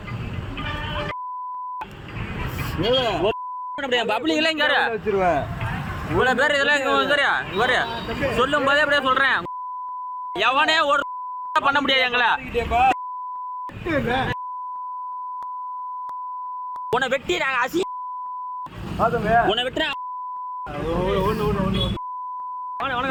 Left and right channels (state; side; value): identical; both; correlation 1.00